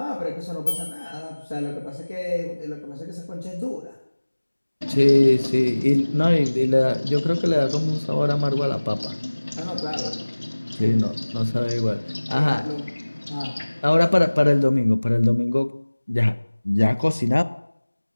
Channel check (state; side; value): inverted; both; correlation -1.00